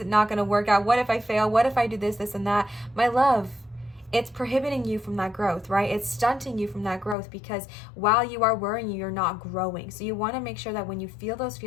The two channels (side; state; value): right; drops out; at 7.2 s